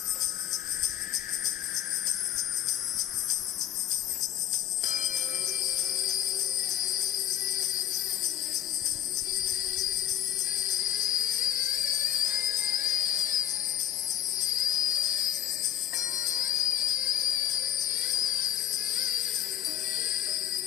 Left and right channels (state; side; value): quieter; right; 11.3 dB